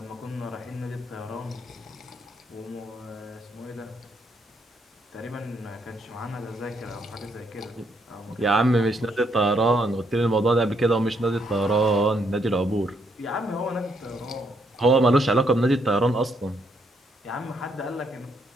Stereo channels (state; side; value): normal; both; correlation 0.73